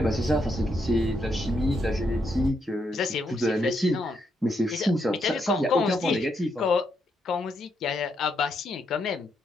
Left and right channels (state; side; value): normal; both; correlation 0.78